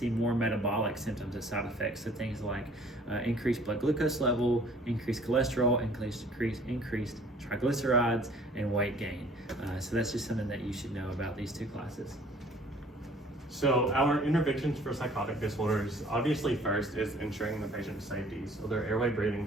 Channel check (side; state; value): both; normal; correlation 0.54